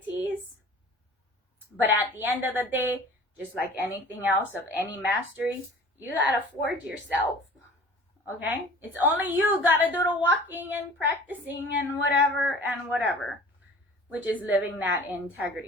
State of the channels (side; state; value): both; normal; correlation 0.45